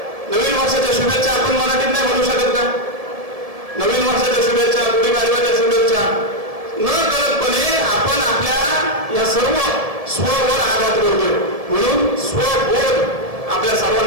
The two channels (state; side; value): late; left; 1.7 ms